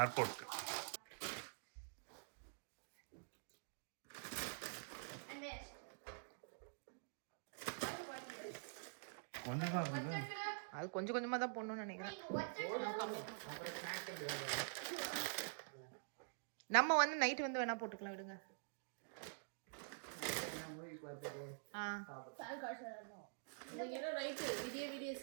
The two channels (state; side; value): silent; left; digital silence